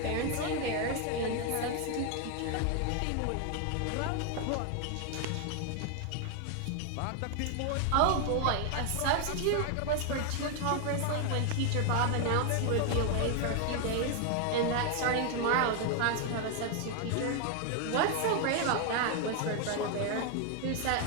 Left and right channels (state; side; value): different; both; correlation 0.00